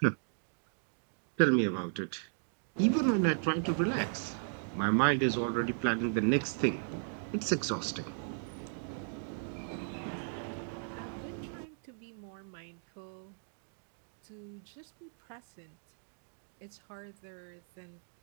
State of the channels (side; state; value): left; silent; digital silence